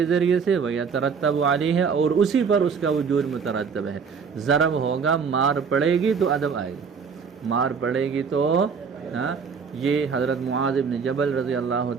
ذریعے سے، ویترتب علیہ اور اسی پر اس کا وجود مترتب ہے۔ ضرب ہوگا مار پڑے گی تو ادب آئے گی، مار پڑے گی تو یہ حضرت معاذ بن جبل رضی اللہ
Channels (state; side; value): quieter; left; 5.9 dB